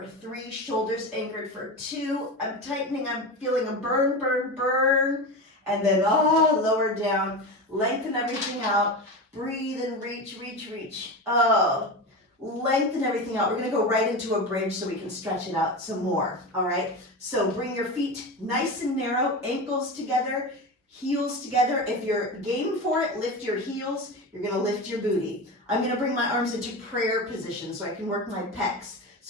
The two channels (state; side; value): normal; both; correlation 0.24